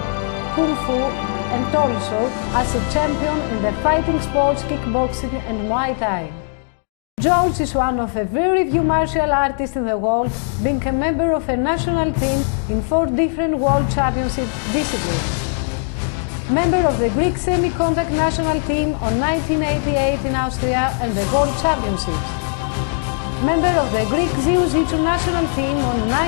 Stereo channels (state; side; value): silent; right; 66 dB below the other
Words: kung fu, and also as a champion in the fighting sports, kickboxing and Muay Thai. George is one of a very few martial artists in the world, being a member of a national team in 4 different world championship disciplines. Member of the Greek semi-contact national team on 1988 in Austria and the World Championships. Member of the Greek Jiu-Jitsu national team on